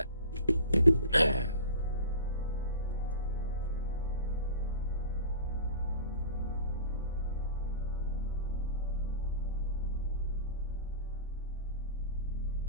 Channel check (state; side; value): inverted; both; correlation -0.38